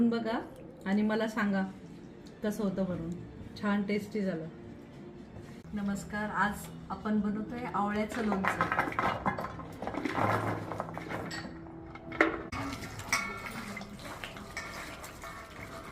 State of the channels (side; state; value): both; identical; correlation 1.00